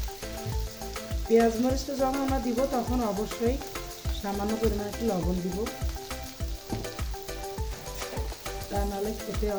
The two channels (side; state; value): both; identical; correlation 1.00